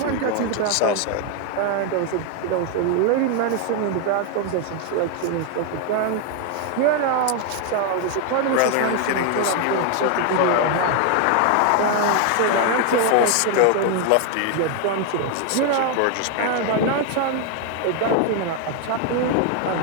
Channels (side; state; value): both; different; correlation 0.00